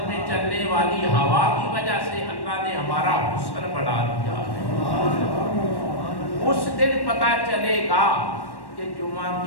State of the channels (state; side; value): late; right; 1.1 ms